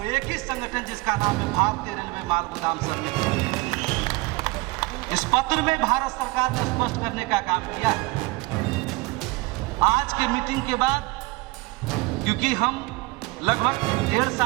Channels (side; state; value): left; quieter; 22.7 dB